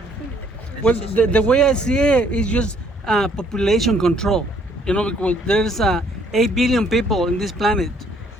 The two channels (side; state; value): both; normal; correlation 0.64